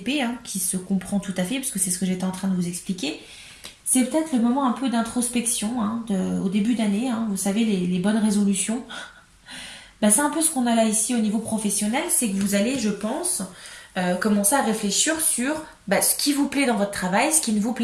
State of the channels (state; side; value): identical; both; correlation 1.00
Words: qui se comprend tout à fait, parce que c'est ce que j'étais en train de vous expliquer. C'est peut-être le moment un peu d'introspection au début d'année. Vous savez, les bonnes résolutions. Bah, c'est un peu ce qu'on a là ici au niveau professionnel. C'est que vous allez, je pense, commencer à réfléchir sur ce qui vous plaît dans votre travail, ce qui ne vous